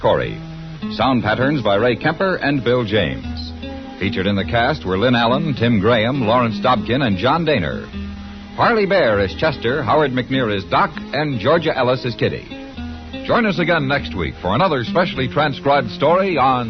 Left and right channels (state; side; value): identical; both; correlation 1.00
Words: Sound patterns by Ray Kemper and Bill James. Featured in the cast were Lynn Allen, Tim Graham, Lawrence Dobkin, and John Daner. Parley Bear is Chester, Howard McNear is Doc, and Georgia Ellis is Kitty. Join us again next week for another specially transcribed story